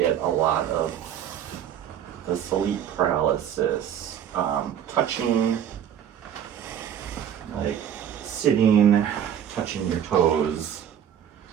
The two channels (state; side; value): quieter; left; 9.6 dB